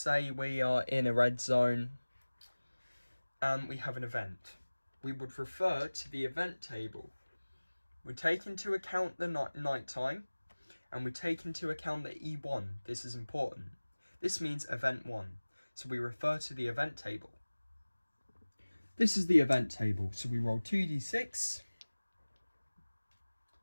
we are in a red zone and we have an event. We would refer to the event table. We take into account the night time, and we take into account the E1. This is important. This means event 1. So we refer to the event table. This is the event table. So we roll 2d6,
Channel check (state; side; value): inverted; both; correlation -1.00